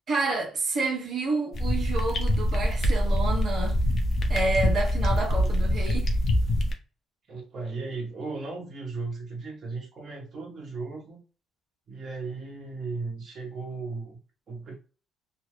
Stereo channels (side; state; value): both; normal; correlation 0.84